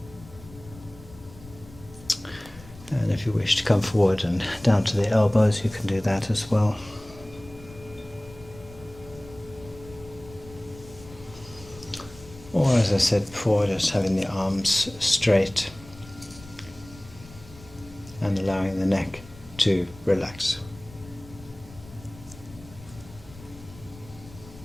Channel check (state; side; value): noise; left; rumble, 19 dB below the sound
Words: And if you wish to come forward and down to the elbows, you can do that as well. Or, as I said before, just having the arms straight and allowing the neck to relax.